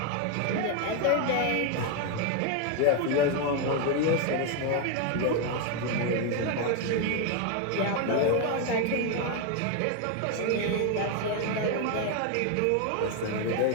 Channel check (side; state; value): both; different; correlation 0.01